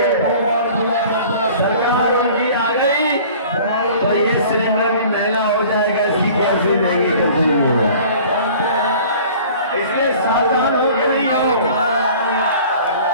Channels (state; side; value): inverted; both; correlation -0.47